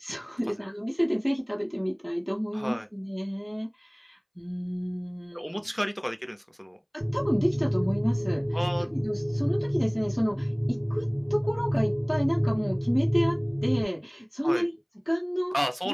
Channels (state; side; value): identical; both; correlation 1.00